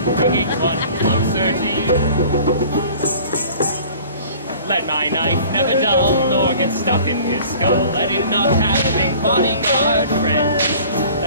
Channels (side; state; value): both; inverted; correlation -0.47